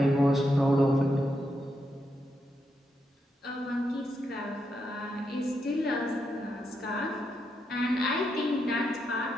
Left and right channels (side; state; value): both; normal; correlation 0.82